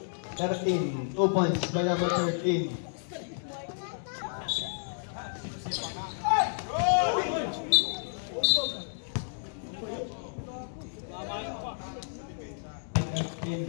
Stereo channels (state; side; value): silent; right; digital silence